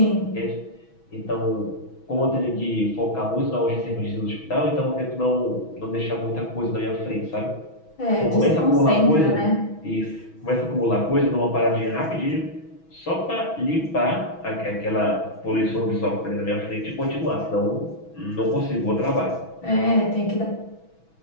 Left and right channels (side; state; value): right; late; 6.2 ms